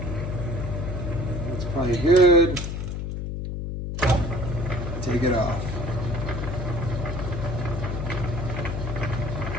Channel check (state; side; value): noise; left; hum, 4 dB below the sound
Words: That's probably good. Take it off.